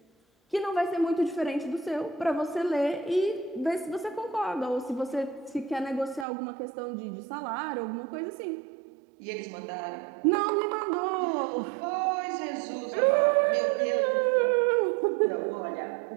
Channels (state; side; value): drops out; left; at 6.2 s